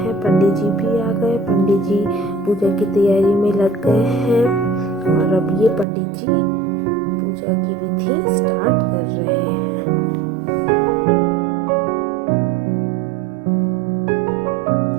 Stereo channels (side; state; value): left; drops out; at 5.9 s